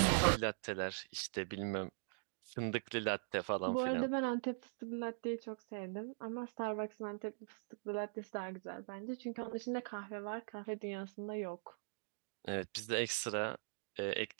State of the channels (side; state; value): left; silent; digital silence